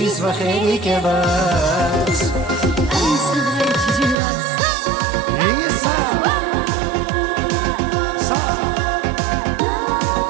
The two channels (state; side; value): drops out; left; at 4.2 s